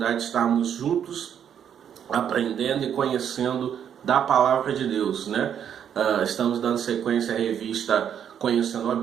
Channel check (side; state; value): left; quieter; 8.8 dB